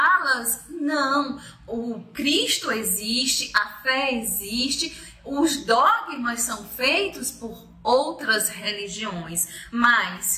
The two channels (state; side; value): identical; both; correlation 1.00